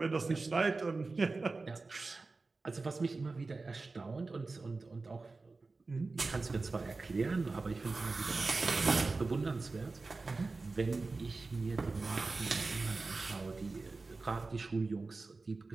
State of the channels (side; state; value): left; quieter; 3.7 dB